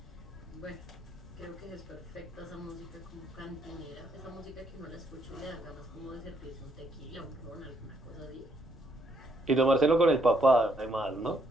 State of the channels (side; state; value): both; normal; correlation 0.73